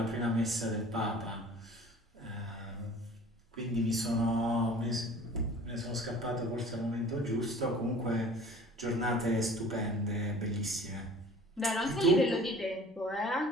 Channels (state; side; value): normal; both; correlation 0.46